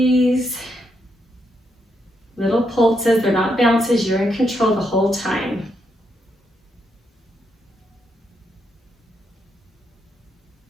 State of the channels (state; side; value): normal; both; correlation 0.79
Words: Little pulses, they're not bounces, you're in control the whole time.